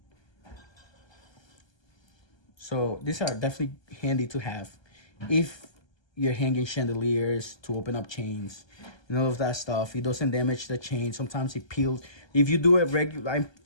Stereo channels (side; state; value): right; late; 1.3 ms